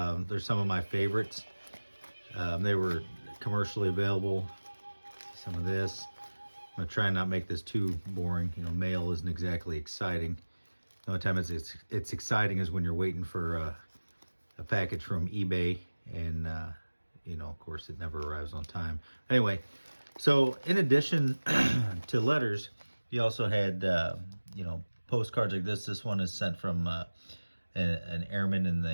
some of my favorites. They were commercially available. Some of this. I'm gonna try and not make this too boring. You know, mail isn't exactly exciting. The only time it's exciting is when you're waiting for a package from eBay, and you know, of course, it never arrives on time. Anyway, so in addition to letters, you also had you know, postcards like this. This one is sent from an airman in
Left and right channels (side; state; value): both; inverted; correlation -1.00